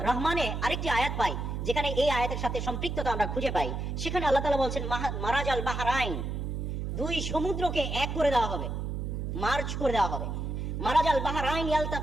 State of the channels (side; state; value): right; noise; hum, 3 dB below the sound